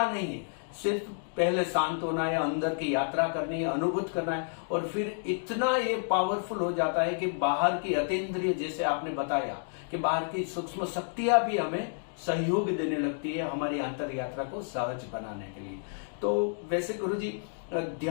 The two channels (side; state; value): right; silent; digital silence